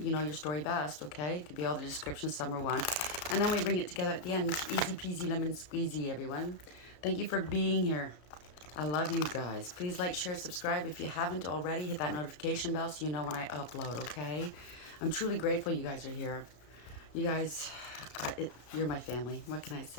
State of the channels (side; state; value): right; late; 33 ms